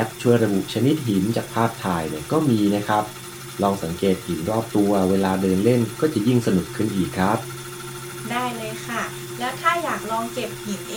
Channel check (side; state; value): both; identical; correlation 1.00